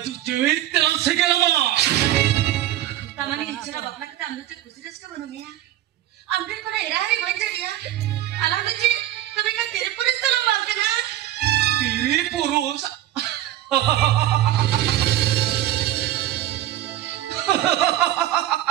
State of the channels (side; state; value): left; quieter; 13.5 dB